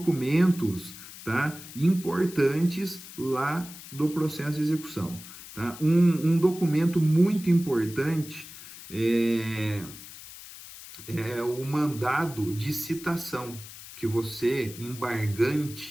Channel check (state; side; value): noise; left; hiss, 15 dB below the sound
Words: tá, importantes lá do processo de execução. Tá? Um documento muito importante é o mandado de citação, que você,